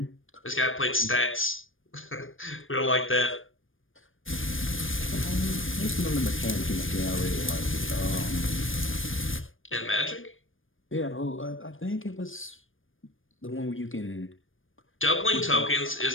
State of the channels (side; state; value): right; late; 0.59 ms